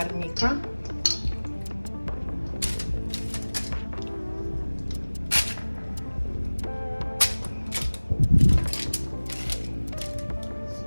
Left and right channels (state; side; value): inverted; both; correlation -1.00